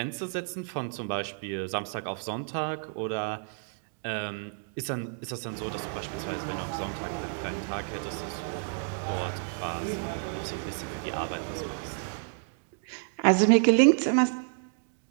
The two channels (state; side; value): silent; left; 58 dB below the other